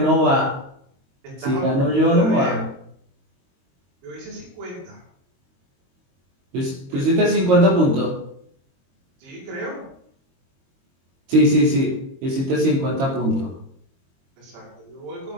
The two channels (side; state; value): left; late; 22 ms